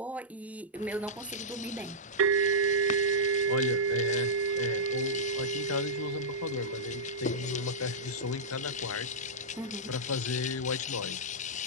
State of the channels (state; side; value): normal; both; correlation -0.12